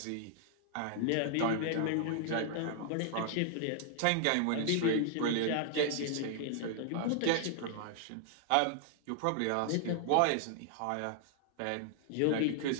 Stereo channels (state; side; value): different; both; correlation 0.00